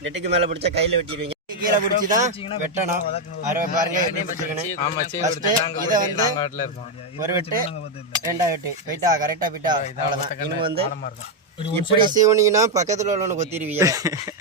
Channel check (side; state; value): both; normal; correlation 0.02